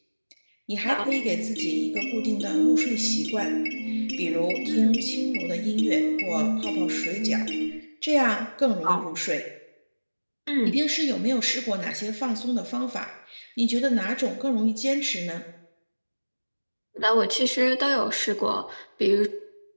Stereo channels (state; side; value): inverted; both; correlation -1.00